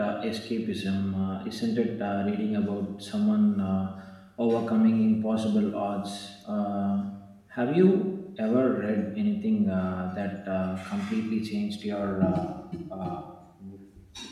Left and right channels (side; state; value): both; identical; correlation 1.00